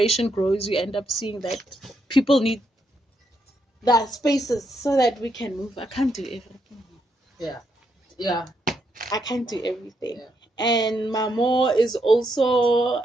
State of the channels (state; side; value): normal; both; correlation 0.78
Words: grows, you end up seeing that people need that spaces so that we can move. I can't do everything. Yeah. I can't do everything. Yeah. And Mamo is also